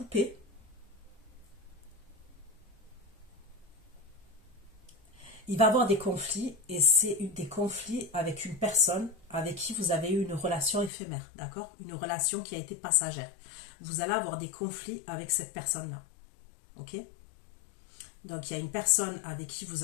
Il va y avoir des conflits et c'est des conflits avec une personne avec qui vous avez eu une relation éphémère, d'accord? Une relation qui a été passagère. Vous allez avoir des conflits avec cette personne-là, ok? Donc il y a une personne avec qui vous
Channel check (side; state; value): right; drops out; at 10.9 s